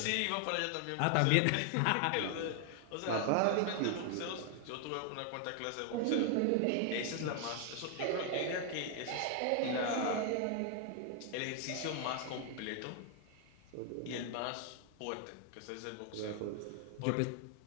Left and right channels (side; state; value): both; different; correlation 0.00